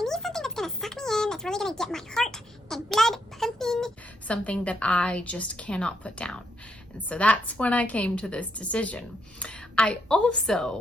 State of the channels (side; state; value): both; normal; correlation 0.77